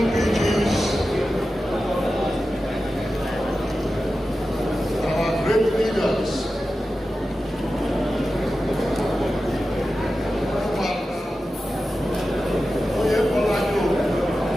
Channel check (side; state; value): both; normal; correlation 0.93